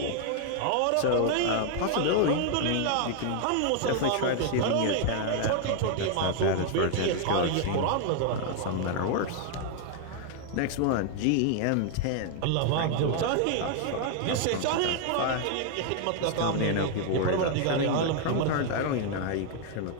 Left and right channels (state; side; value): different; both; correlation 0.00